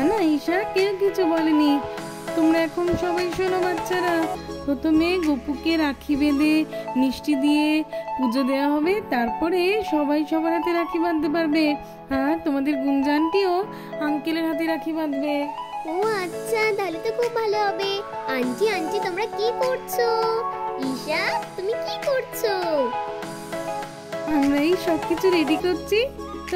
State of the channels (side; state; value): both; identical; correlation 1.00